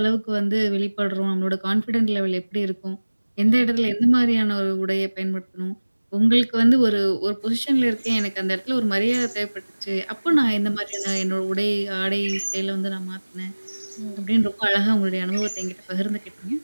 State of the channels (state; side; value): inverted; both; correlation -1.00